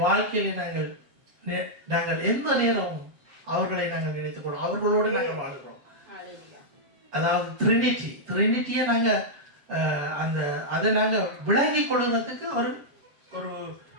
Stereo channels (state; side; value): late; left; 7.1 ms